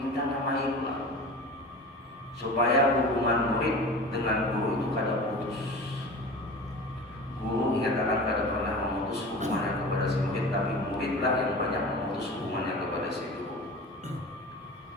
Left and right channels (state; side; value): normal; both; correlation 0.35